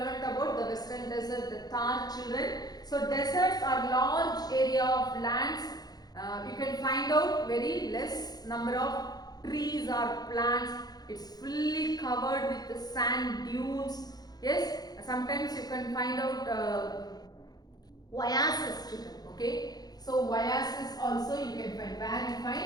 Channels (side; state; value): right; late; 0.19 ms